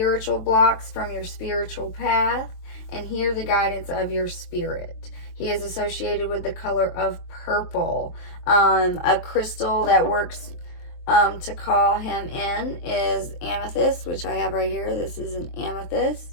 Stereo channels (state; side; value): late; right; 23 ms